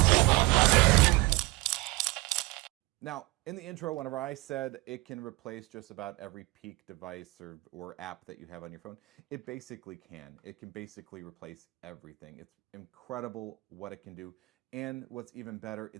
Now, in the intro, whenever I said it can replace just about every peak device or app that you have on your phone, it basically can. It can basically replace everything. It's incredible what it can do. And what's even better,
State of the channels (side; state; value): left; quieter; 23.2 dB